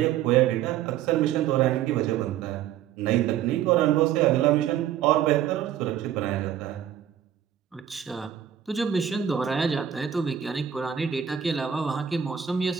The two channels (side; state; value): left; quieter; 9.8 dB